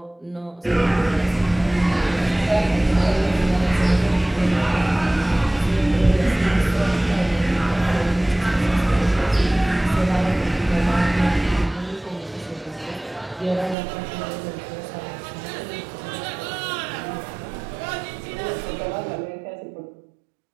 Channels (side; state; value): left; drops out; at 13.8 s